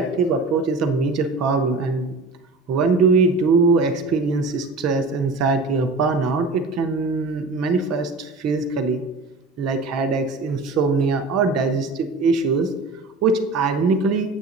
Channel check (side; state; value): left; quieter; 3.5 dB